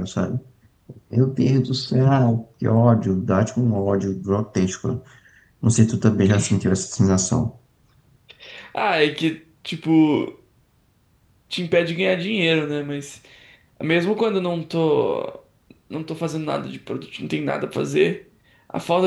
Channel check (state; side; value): identical; both; correlation 1.00